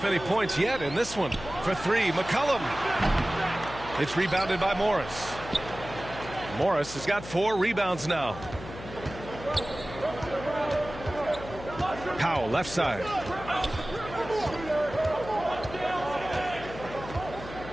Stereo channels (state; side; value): noise; left; hum, 13 dB below the sound